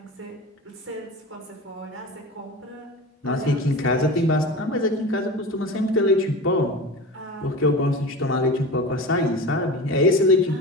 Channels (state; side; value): normal; both; correlation 0.31